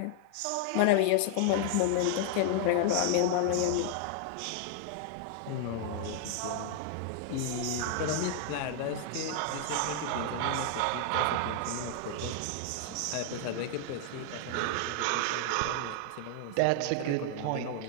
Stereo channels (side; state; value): both; different; correlation 0.00